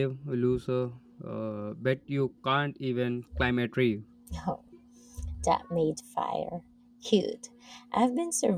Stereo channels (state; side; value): identical; both; correlation 1.00